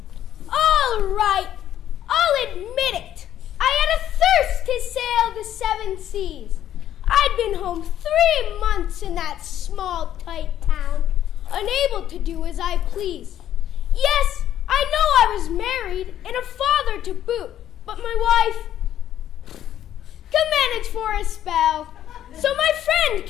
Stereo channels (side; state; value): right; quieter; 11.3 dB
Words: All right, I'll admit it. I had a thirst to sail the 7 seas. I'd been home 3 months in that small, tight town, unable to do as I pleased. Yes, I know I was married and a father to boot, but my wife could manage for a spell. So my friend,